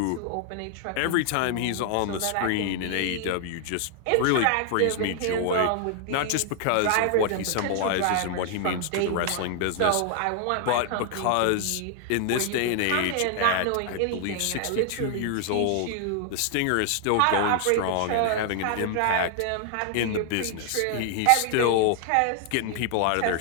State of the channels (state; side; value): different; both; correlation 0.00